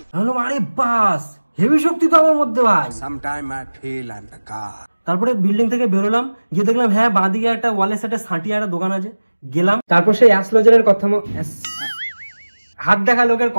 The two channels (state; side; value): inverted; both; correlation -1.00